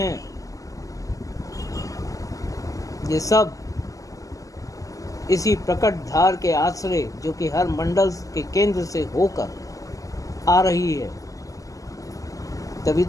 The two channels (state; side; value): late; right; 0.17 ms